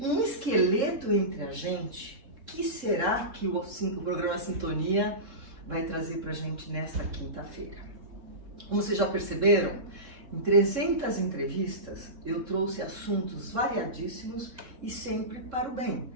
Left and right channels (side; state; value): left; late; 3.7 ms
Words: um esqueleto entre a gente. O que será que o programa Sintonia vai trazer pra gente nesta quinta-feira? Como vocês já perceberam, em 300 entrevistas eu trouxe assuntos variadíssimos e sempre para o bem.